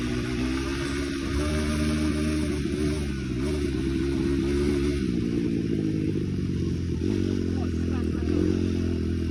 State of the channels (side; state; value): both; identical; correlation 1.00